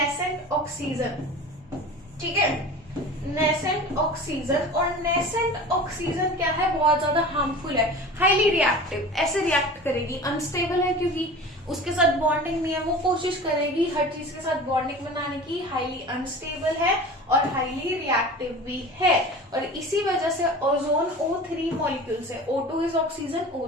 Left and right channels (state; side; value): normal; both; correlation 0.37